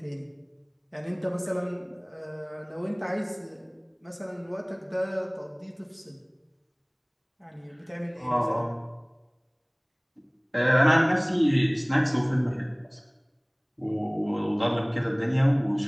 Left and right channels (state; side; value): identical; both; correlation 1.00